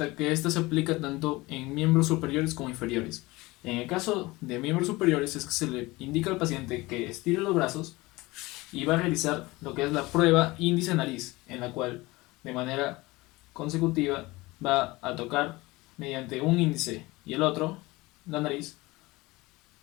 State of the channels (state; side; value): quieter; right; 21.4 dB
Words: que esta se aplica tanto en miembros superiores como inferiores. En el caso de miembros superiores es que se le indica al paciente que estire los brazos y va a realizar lo que es la prueba índice-nariz, en la cual de manera consecutiva va a tocar mediante un índice y el otro la nariz,